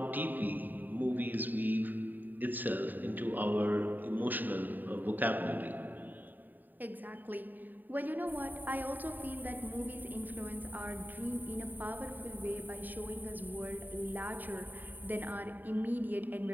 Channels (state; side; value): late; left; 0.088 ms